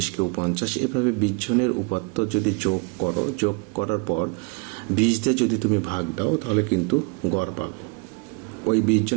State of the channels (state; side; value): quieter; left; 31.4 dB